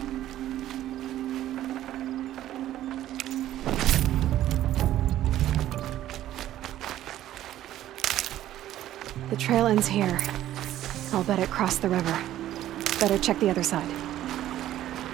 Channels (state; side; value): quieter; left; 13.1 dB